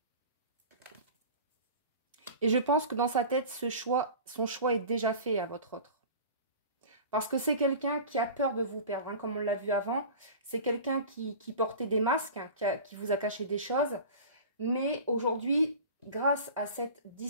Et je pense que dans sa tête, son choix est déjà fait à votre autre. Parce que c'est quelqu'un qui a peur de vous perdre, hein, comme on l'a vu avant. C'est quelqu'un qui portait des masques, hein, qui vous a caché des choses. Mais aujourd'hui, grâce à cette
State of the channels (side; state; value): both; inverted; correlation -0.37